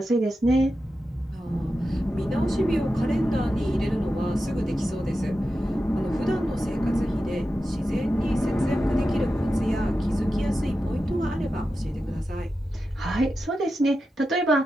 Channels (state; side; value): normal; both; correlation 0.91